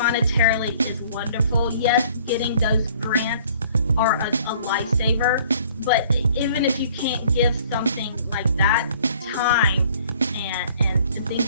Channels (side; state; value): both; inverted; correlation -0.55